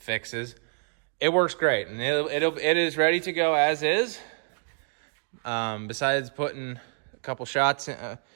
It works great, and it is ready to go as is. Besides putting a couple shots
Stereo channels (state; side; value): silent; left; digital silence